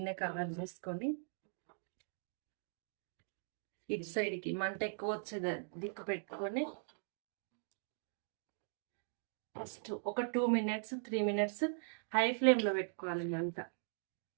కవర్ చేసుకొని ఇటు సైడ్కి మంట ఎక్కువ వచ్చేది దిక్కు పెట్టుకొని ఫస్ట్ ఒక 2 minutes 3 minutes హై ఫ్లేమ్లో పెట్టుకోవాలి మంట.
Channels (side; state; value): left; silent; digital silence